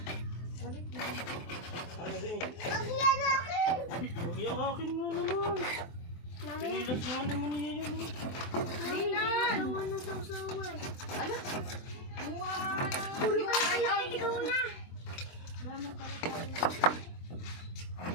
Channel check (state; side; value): late; right; 23 ms